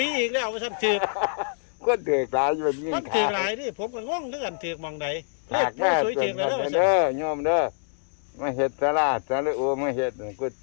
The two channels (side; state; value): right; silent; digital silence